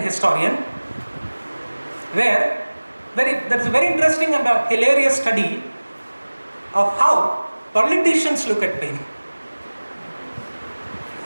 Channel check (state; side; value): inverted; both; correlation -1.00